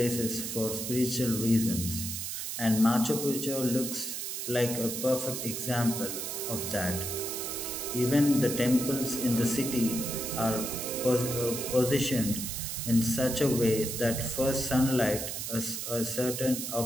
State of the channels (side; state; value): right; noise; hiss, 4 dB below the sound